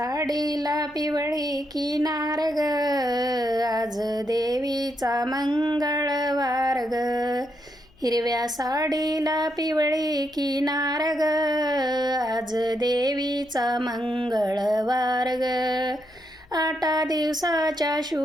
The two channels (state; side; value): noise; left; hum, 29 dB below the sound